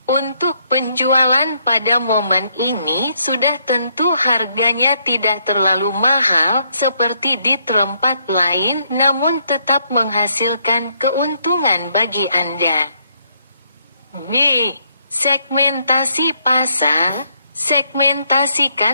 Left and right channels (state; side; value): inverted; both; correlation -0.72